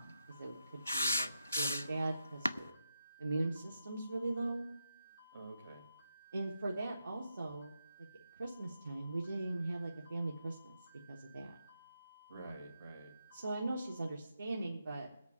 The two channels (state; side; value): inverted; both; correlation -0.86